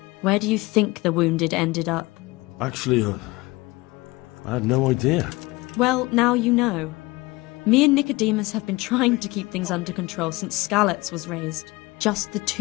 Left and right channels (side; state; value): right; quieter; 22.2 dB